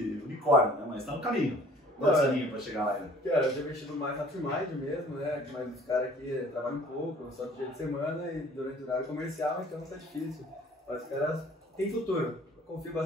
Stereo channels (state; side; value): normal; both; correlation 0.52